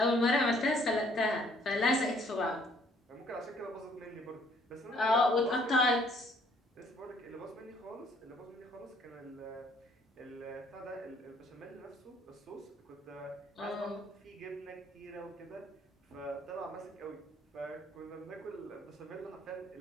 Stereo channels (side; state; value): both; normal; correlation 0.63